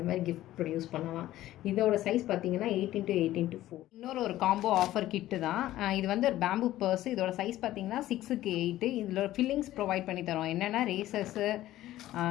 மாதிரி கிஃப்ட் ப்ரொடியூஸ் பண்ணலாம். இதோட சைஸ் பார்த்தீங்கன்னா 8x8x4. இன்னொரு ஒரு காம்போ ஆஃபர் கிட்டு தான் இது. வந்து ஒரு பேம்பு பர்ஸ். இதோட சைஸ் பார்த்தீங்கன்னா 6x8. இதில் ஃபில்லிங்ஸ் ப்ரொவைட் பண்ணி தரோம். என்னென்னா razors,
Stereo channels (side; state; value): right; quieter; 14.6 dB